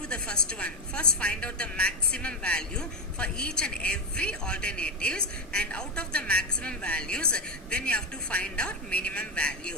the first one. First find out the maximum value for each and every alternatives, and out of the maximum values, then you have to find out minimum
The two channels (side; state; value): both; normal; correlation 0.10